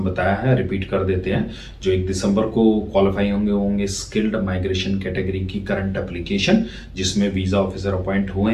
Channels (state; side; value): identical; both; correlation 1.00